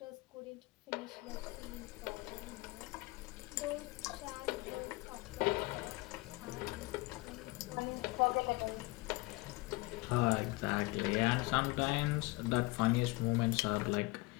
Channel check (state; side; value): quieter; right; 23.0 dB